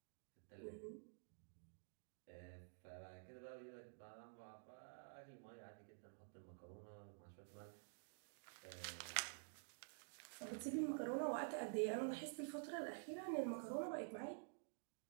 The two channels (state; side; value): silent; left; digital silence